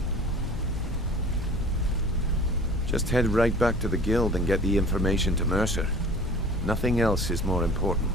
Just head right back to the guild and get the information to Mercer. Nothing else is more important.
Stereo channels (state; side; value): normal; both; correlation 0.45